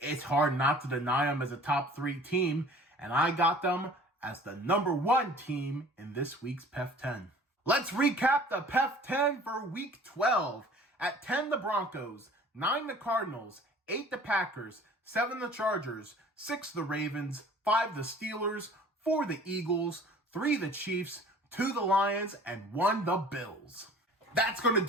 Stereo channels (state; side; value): normal; both; correlation 0.48